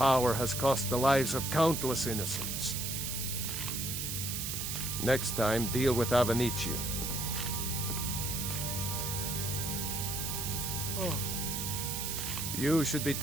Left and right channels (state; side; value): noise; right; hiss, 3 dB below the sound